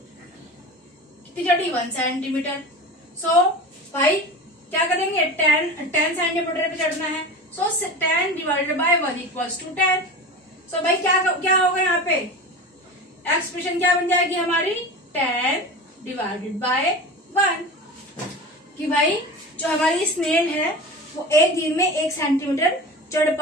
कितनी चढ़ी, 1 सेंटीमीटर। सो भाई क्या करेंगे, 10 सेंटीमीटर पे चढ़ना है। सो 10 डिवाइडेड बाय 1 इक्वल्स टू 10। सो भाई क्या होगा यहाँ पे, एक्सप्रेशन क्या बन जाएगी हमारी, 10 डिवाइडेड बाय 1। कि भाई जो हमारी स्नेल है वो एक दिन में 1 सेंटीमीटर चढ़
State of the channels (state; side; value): normal; both; correlation 0.31